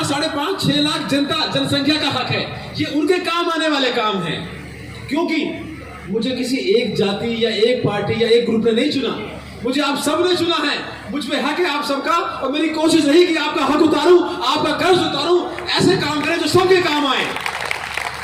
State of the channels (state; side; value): identical; both; correlation 1.00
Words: लाख जनसंख्या का हक है। ये उनके काम आने वाले काम हैं, क्योंकि मुझे किसी एक जाति या एक पार्टी या एक ग्रुप ने नहीं चुना, मुझे आप सब ने चुना है। मुझ पे हक है आप सबका, और मेरी कोशिश रही कि आपका हक उतारूं, आपका कर्ज उतारूं, ऐसे काम करें जो सबके काम आए।